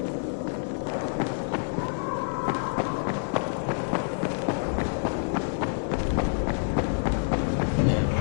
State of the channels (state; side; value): silent; right; digital silence